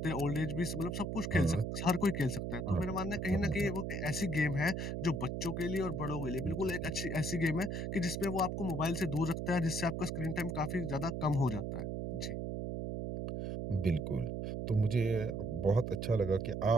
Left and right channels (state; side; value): noise; right; hum, 3 dB below the sound